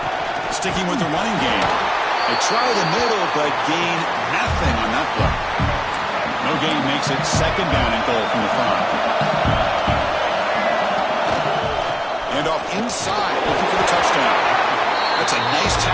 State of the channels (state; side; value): identical; both; correlation 1.00